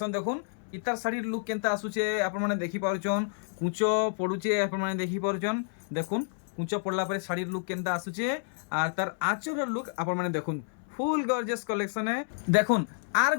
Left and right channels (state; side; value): silent; right; 58 dB below the other